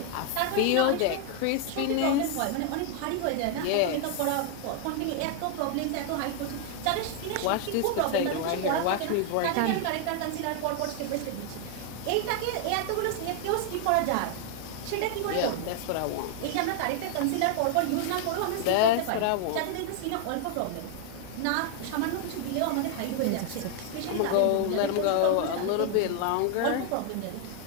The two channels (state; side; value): different; both; correlation 0.00